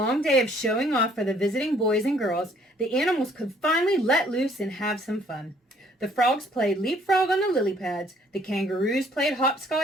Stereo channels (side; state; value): both; normal; correlation 0.62